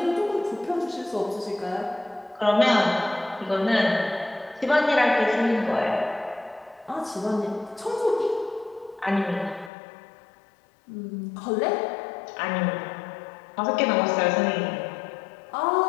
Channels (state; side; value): drops out; right; at 9.7 s